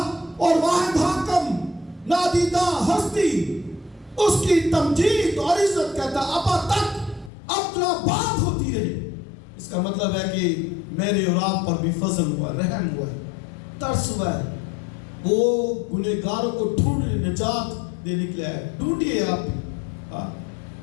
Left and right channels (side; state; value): right; drops out; at 7.3 s